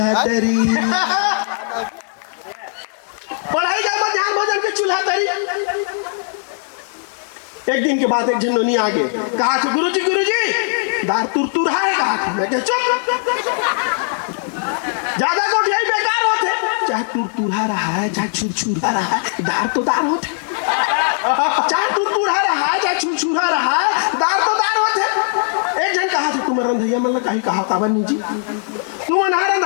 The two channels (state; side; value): silent; right; 63 dB below the other